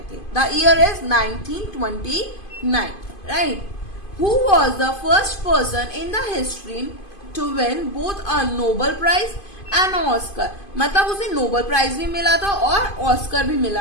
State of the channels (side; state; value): right; late; 2.5 ms